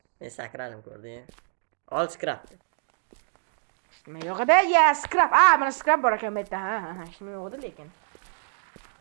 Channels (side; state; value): left; silent; 61 dB below the other